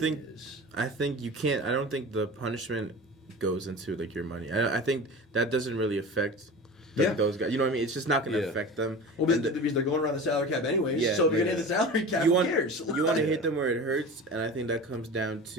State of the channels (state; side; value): normal; both; correlation 0.33